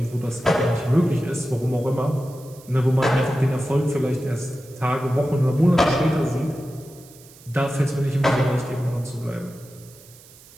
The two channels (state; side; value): noise; right; hiss, 23 dB below the sound